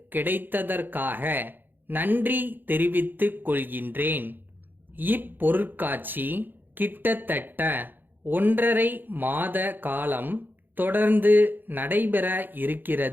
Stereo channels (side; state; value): left; late; 0.092 ms